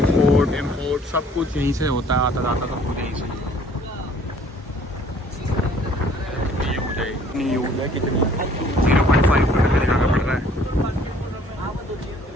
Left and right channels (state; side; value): normal; both; correlation 0.57